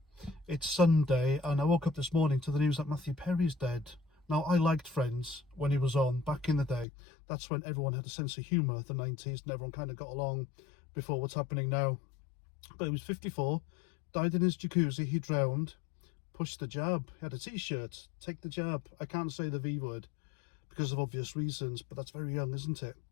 It's Sunday, and I woke up this morning to the news that Matthew Perry's dead. Now, I liked Friends when he was on back in the day. That's when everyone had a sense of humour, the 90s, and everyone kind of got along before what's happening now. But he was 54, died in his jacuzzi, he drowned, pushed the jab. He had a t-shirt, take the jab. I can't say the V word because of obvious reasons, but that's very young, isn't it?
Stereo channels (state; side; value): drops out; right; at 6.9 s